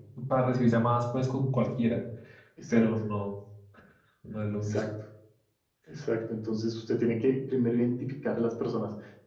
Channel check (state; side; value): identical; both; correlation 1.00